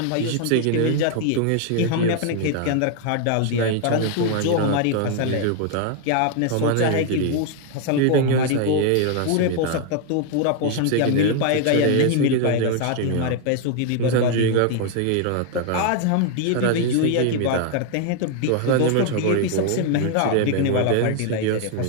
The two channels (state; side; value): different; both; correlation 0.01